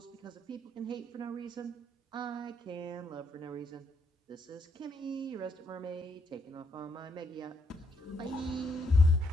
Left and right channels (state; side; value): normal; both; correlation 0.75